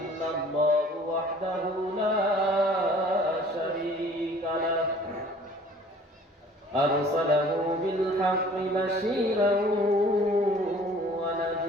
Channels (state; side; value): normal; both; correlation 0.51